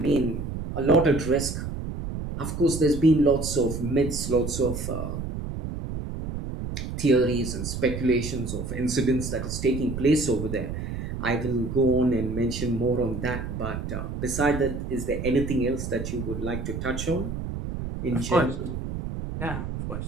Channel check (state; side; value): noise; right; rumble, 5 dB below the sound